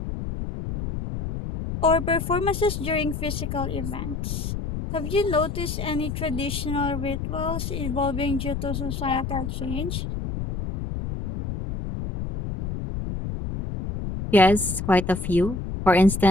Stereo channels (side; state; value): left; noise; rumble, 5 dB below the sound